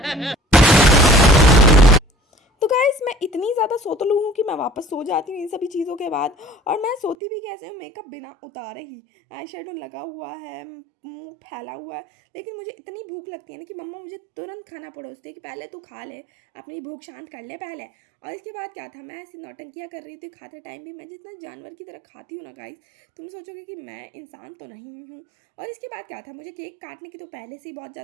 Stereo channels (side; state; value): left; drops out; at 7.2 s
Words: तो गाइस मैं इतनी ज़्यादा सोतलू हूँ कि मैं वापस सो जाती हूँ इन सभी चीज़ों के बाद। और मैं सोती भी कैसे हूँ, मेकअप बिना उतारे ही, आई शेडो लगा हुआ है, मुंह फैला हुआ है। लेकिन मुझे इतनी भूख लगती है ना कि मम्मा मुझे तुरंत खाना परोसती है कि पहले तू खा ले, अपनी भूख शांत कर ले पहले। और इसके बाद क्या था, मैं ऐसी नौटंकियाँ कर रही थी खाते टाइम भी, मैं जितना जानवर की तरह खाती हूँ ना गाइस, तुम सोचोगे कि मैं इंसान तो नहीं हूँ। और इसके बाद क्या था, मुझे केक काटने की तो पहले से ही बहुत